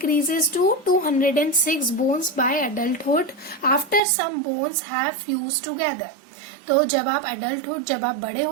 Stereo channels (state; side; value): drops out; left; at 4.0 s